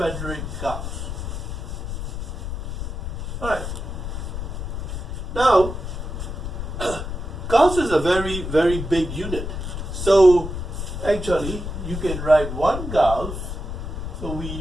Gauss. All right. Now, Gauss is a very, very big unit. So, actually, you can write 1 Gauss. So we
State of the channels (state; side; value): noise; left; rumble, 5 dB below the sound